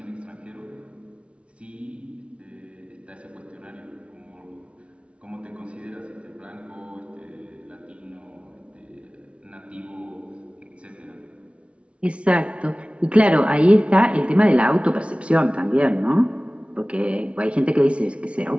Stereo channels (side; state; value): left; late; 0.061 ms